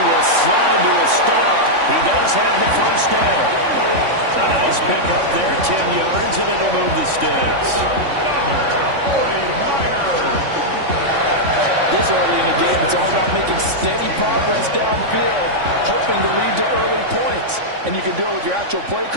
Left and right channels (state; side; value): late; left; 3.5 ms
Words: will slide to a stop. He does have the first down. A nice pick up there, 10 yards, and it'll move the sticks. This early in the game, it's all about making steady progress downfield, hoping to lead to early points. And you can do it with your actual play